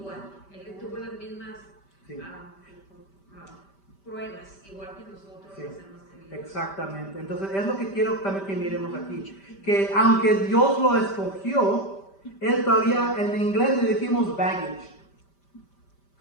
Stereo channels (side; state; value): right; late; 5.1 ms